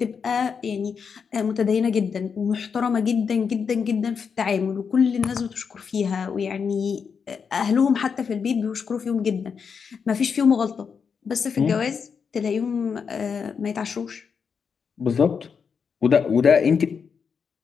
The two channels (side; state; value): right; quieter; 6.2 dB